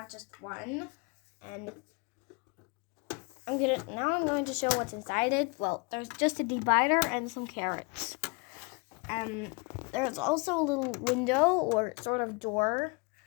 just one, and I'm going to show what's inside it. Well, there's just a divider and some carrots. There's also a little window or sort of door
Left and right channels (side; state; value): right; quieter; 30.8 dB